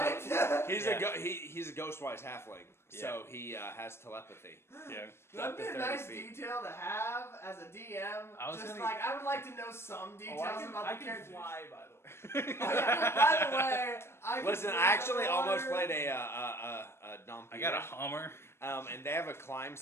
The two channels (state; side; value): late; right; 0.12 ms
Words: He's Yeah. he's a ghostwise halfling, so he has telepathy. Yeah. That'd be a 30 nice feet. detail to have as a DM. I was Just gonna- like I would like to know some details about I the can characters. fly, by the way. Oh, yeah. By the way, I can Listen, swim I actually underwater. almost played a Dompire. I got a Hummer. and they have a climb